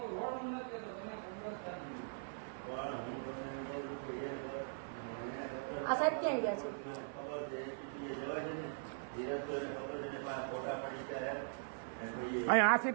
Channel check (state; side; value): silent; left; 50 dB below the other